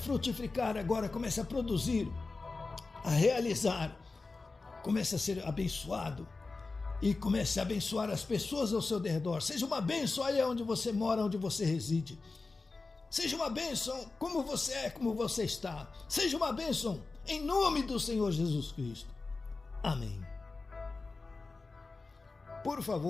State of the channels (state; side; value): quieter; right; 3.8 dB